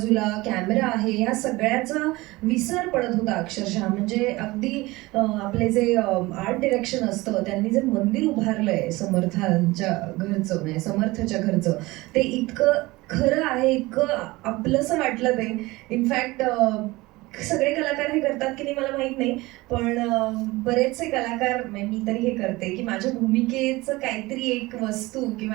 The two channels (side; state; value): left; quieter; 20.9 dB